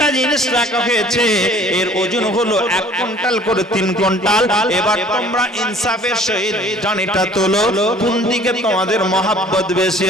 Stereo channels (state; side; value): normal; both; correlation 0.52